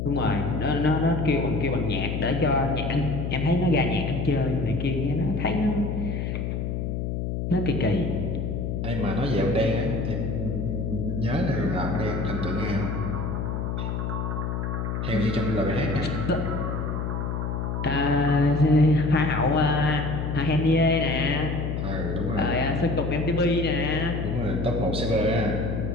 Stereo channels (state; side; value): noise; left; hum, 2 dB below the sound